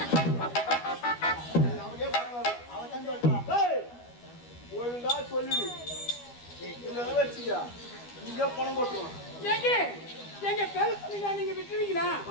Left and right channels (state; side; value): late; right; 12 ms